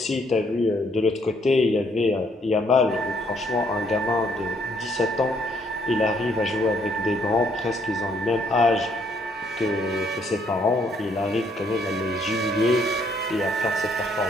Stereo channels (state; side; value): normal; both; correlation 0.69